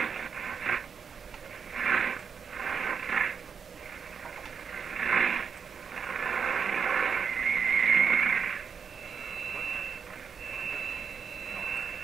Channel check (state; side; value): quieter; left; 6.4 dB